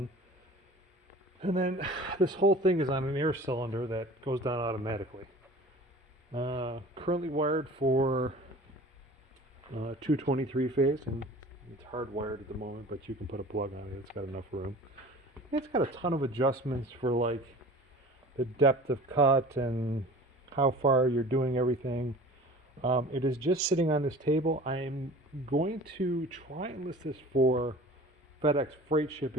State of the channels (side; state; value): both; normal; correlation 0.42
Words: And then this whole thing is on an air cylinder that goes down automatically. Currently wired for 223 phase, and it's hardwired at the moment, but you can put a plug on it. It's got enough room. It's got a ton of adjustments for like the depth of cut and how far you're doing everything. It is just sitting on this table. I'm going to try and list this for FedEx freight